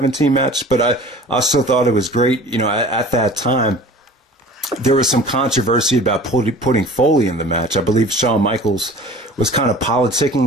match, but I still thought it was great. At that time, there was some controversy about putting Foley in the match. I believe Shawn Michaels was kind of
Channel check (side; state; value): both; normal; correlation 0.43